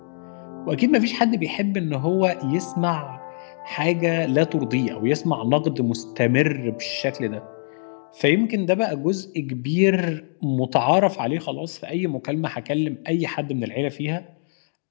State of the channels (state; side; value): silent; right; digital silence